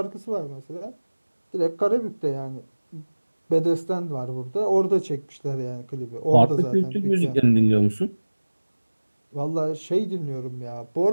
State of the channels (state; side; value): inverted; both; correlation -1.00